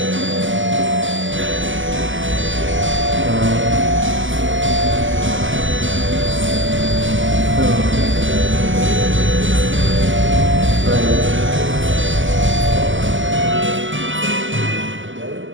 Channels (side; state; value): left; late; 0.56 ms